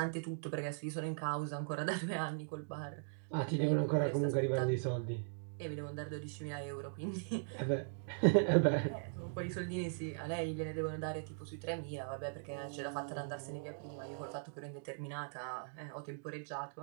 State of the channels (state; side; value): silent; left; digital silence